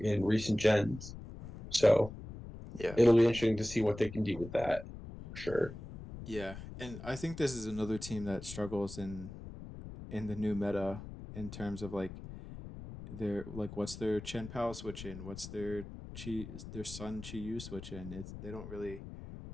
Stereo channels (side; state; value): left; noise; rumble, 12 dB below the sound